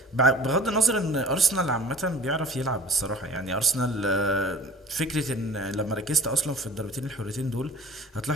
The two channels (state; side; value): normal; both; correlation 0.45